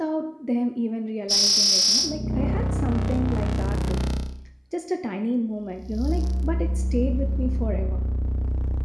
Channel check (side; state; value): both; identical; correlation 1.00